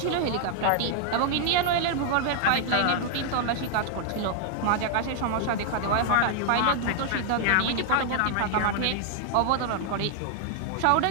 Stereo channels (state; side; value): different; both; correlation 0.00